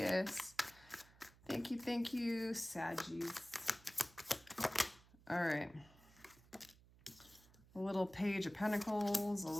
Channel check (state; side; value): noise; right; hum, 25 dB below the sound